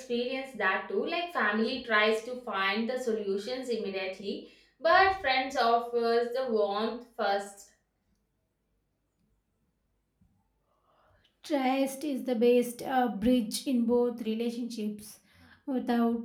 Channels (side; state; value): both; identical; correlation 1.00